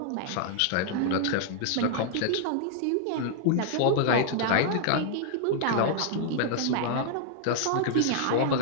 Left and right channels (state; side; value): different; both; correlation -0.01